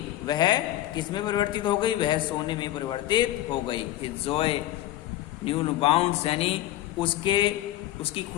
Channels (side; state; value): right; quieter; 14.6 dB